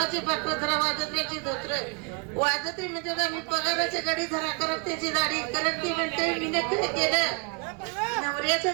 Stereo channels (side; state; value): left; quieter; 33.8 dB